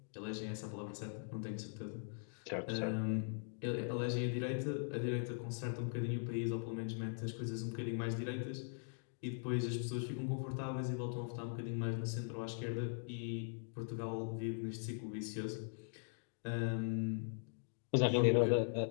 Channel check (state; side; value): silent; right; digital silence